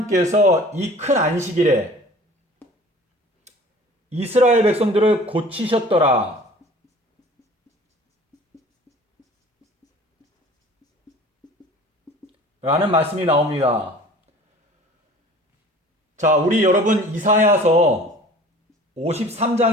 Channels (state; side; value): normal; both; correlation 0.46